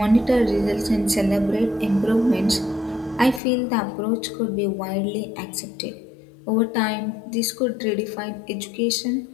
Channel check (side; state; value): right; drops out; at 3.4 s